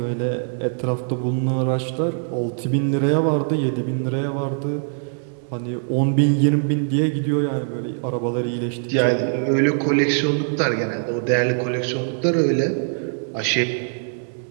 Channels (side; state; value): left; silent; digital silence